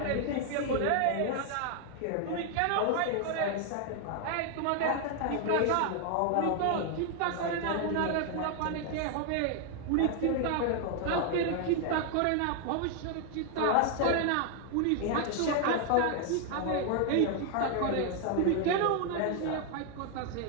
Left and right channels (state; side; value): different; both; correlation 0.00